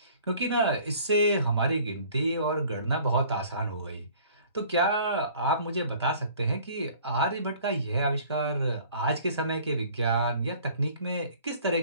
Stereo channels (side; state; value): both; inverted; correlation -0.52